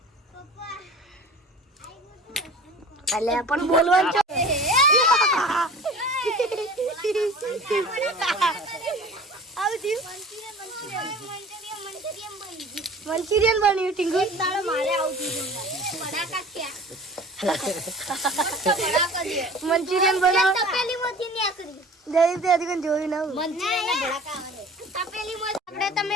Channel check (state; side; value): normal; both; correlation 0.42